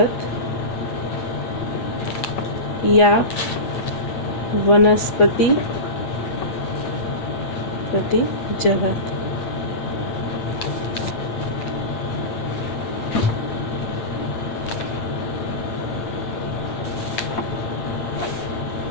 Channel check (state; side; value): late; right; 8.4 ms